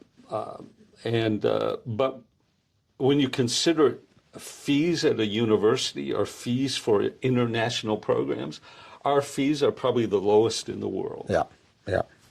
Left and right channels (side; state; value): both; identical; correlation 1.00